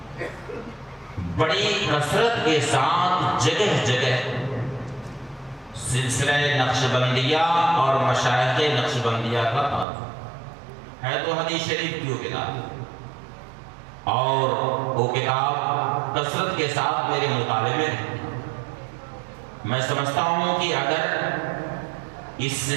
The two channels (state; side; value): drops out; left; at 9.9 s